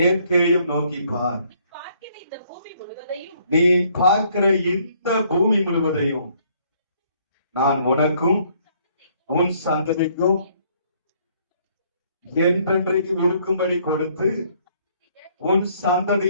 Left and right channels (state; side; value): inverted; both; correlation -0.65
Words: நோக்கி பார். நீ பார்க்கிற இந்த பூமி முழுவதையும் நான் உனக்கும் உன் சந்ததிக்கும் என்றென்றைக்கு இருக்கும்படி கொடுத்து உன்